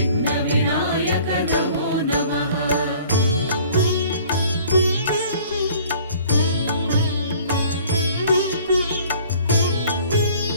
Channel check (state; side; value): inverted; both; correlation -0.52